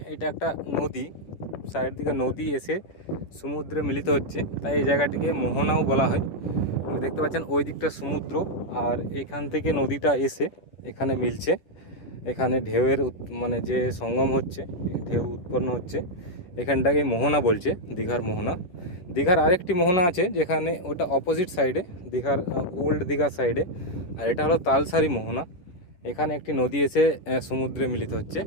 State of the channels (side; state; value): right; late; 10 ms